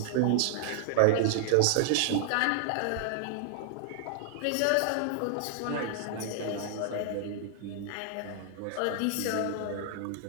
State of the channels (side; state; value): both; different; correlation 0.00